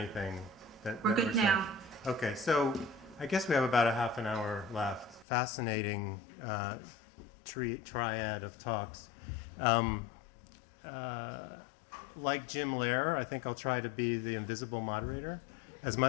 We're that good saying. now. Okay, so I guess we have about a half an hour left. Fascinating triad of talks. Like Jim Lair, I think I'll try to be the invisible moderator as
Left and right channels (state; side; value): drops out; right; at 5.2 s